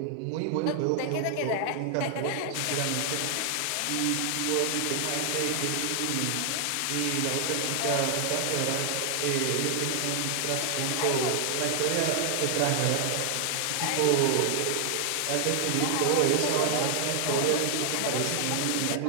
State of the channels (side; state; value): both; different; correlation 0.00